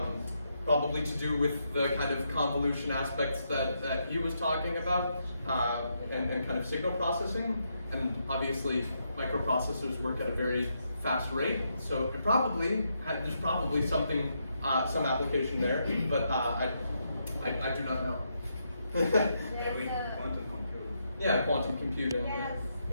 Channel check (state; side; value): inverted; both; correlation -0.80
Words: probably to do with the kind of convolution aspects that he was talking about, and kind of signal processing. And obviously, microprocessors work at a very fast rate, so there's probably something, some application there, but I do not know. There's a, Quantum computing. Yeah, quantum computing. yes,